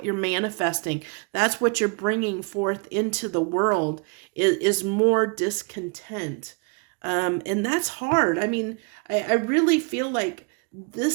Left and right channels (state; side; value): quieter; left; 33.5 dB